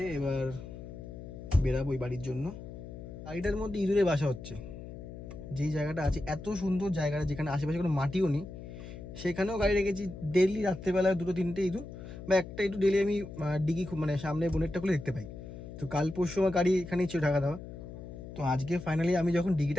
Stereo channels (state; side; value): noise; left; hum, 12 dB below the sound